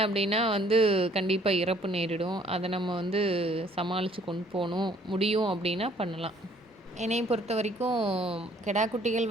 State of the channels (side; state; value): both; normal; correlation 0.60